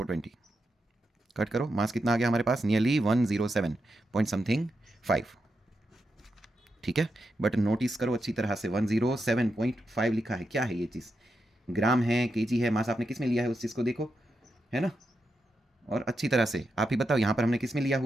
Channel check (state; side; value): normal; both; correlation 0.86